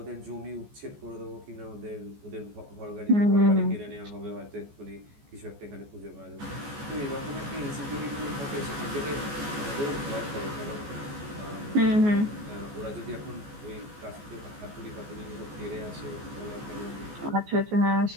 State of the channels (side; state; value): left; late; 14 ms